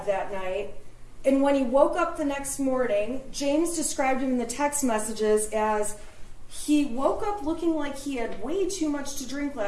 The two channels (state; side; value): identical; both; correlation 1.00